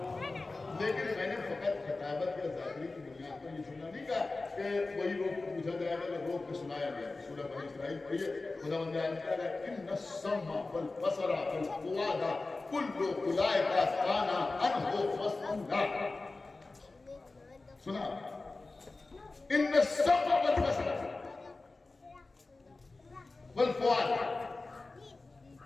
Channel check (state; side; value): quieter; right; 3.4 dB